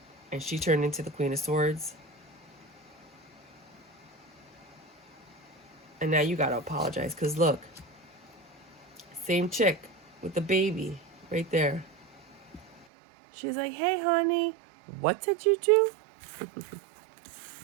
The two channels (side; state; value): left; drops out; at 12.9 s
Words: and she turned into the Queen of Swords. And now you gotta apologize, because look, same chick with the baby right there. She's like, hey, honey, what did you do?